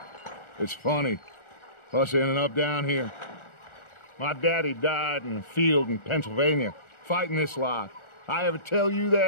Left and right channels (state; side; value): late; right; 1.4 ms